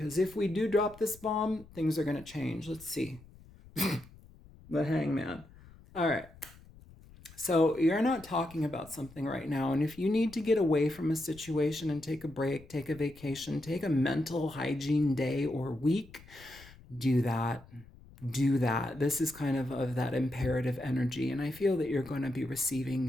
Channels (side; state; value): left; noise; rumble, 22 dB below the sound